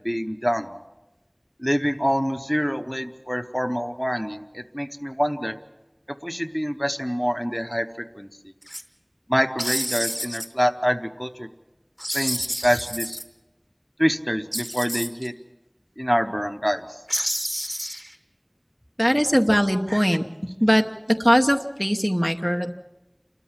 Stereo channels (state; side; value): identical; both; correlation 1.00